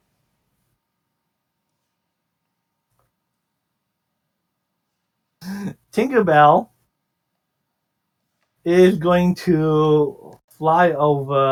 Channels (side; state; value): both; identical; correlation 1.00